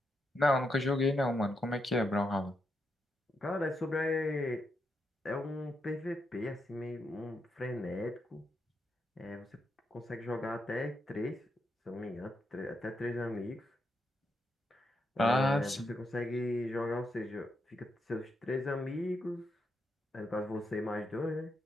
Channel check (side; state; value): both; normal; correlation 0.82